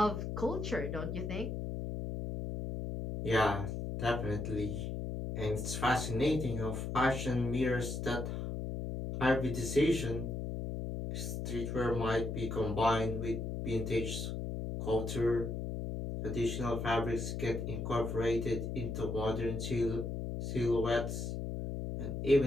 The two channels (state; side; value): noise; left; hum, 4 dB below the sound